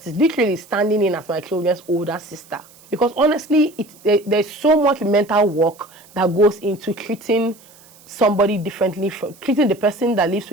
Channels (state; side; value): noise; right; hiss, 26 dB below the sound